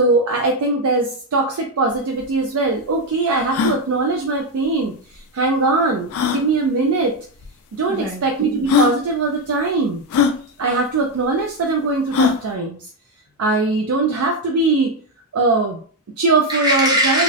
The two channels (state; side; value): normal; both; correlation 0.06